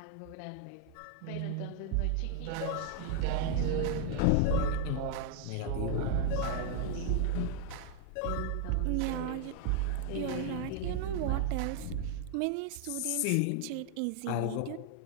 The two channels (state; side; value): different; both; correlation 0.00